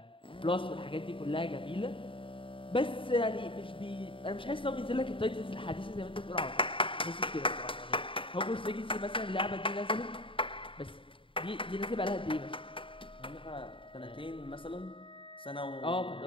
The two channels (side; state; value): right; late; 0.25 ms